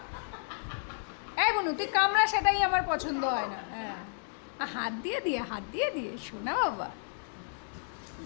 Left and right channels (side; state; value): right; silent; digital silence